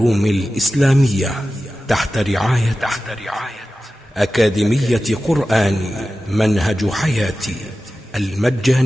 الإسلامية تحت رعاية أكاديمية قرآن منهج حياتي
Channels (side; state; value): both; normal; correlation 0.94